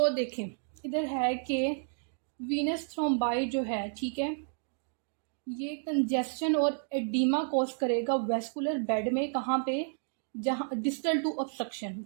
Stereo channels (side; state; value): left; silent; digital silence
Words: देखें, इधर है कि वीनस थ्रोम्बाई जो है, ठीक है, ये कंजेस्शन और एडिमा कॉज करेगा वेस्कुलर बेड में। कहाँ पे? जहाँ डिस्टल टू ऑब्स्ट्रक्शन,